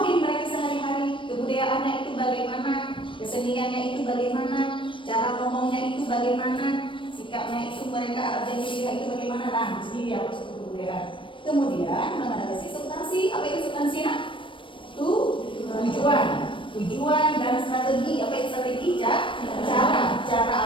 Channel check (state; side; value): late; right; 0.25 ms